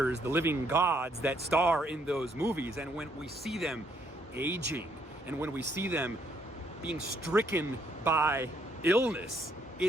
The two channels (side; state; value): both; normal; correlation 0.70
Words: the living gods that star in those movies. And when we see them aging, and when we see them being stricken by illness,